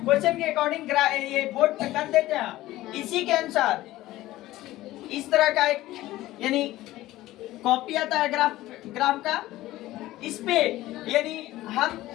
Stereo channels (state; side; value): quieter; right; 16.4 dB